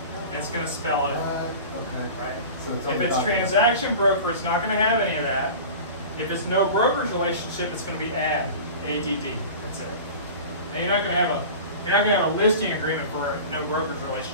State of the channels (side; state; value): both; inverted; correlation -0.36